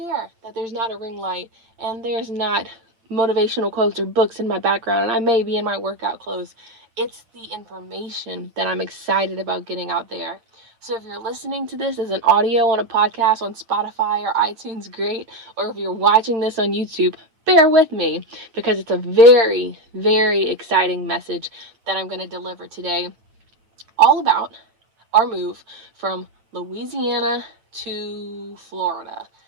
that there's not a ring light and there's not motivational quotes or books in my background and I may be in my workout clothes. It's the information that I'm excited about getting out there. So if you're listening to this as an audio on a podcast on Spotify or iTunes, great. Or if you're watching this on YouTube, bear with me because it's a very, very exciting message that I'm going to deliver today, all about our move from Louisiana to Florida.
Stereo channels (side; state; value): left; late; 8.9 ms